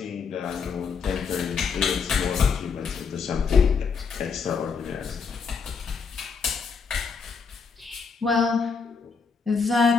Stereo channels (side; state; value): right; quieter; 5.6 dB